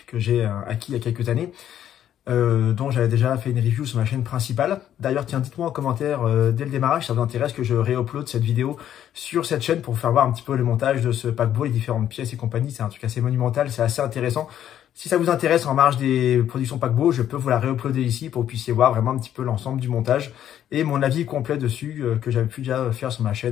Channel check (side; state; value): right; quieter; 10.7 dB